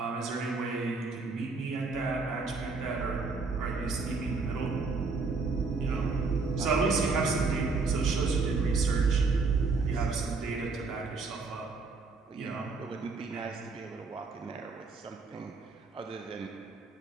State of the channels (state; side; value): quieter; left; 4.1 dB